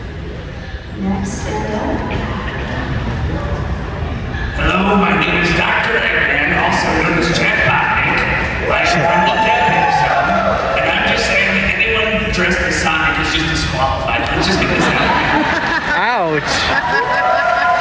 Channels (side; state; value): both; identical; correlation 1.00